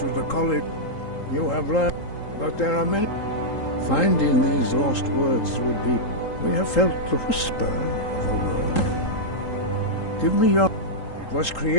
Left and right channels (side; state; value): right; late; 3.8 ms